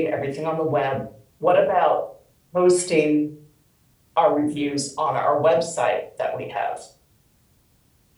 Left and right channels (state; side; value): identical; both; correlation 1.00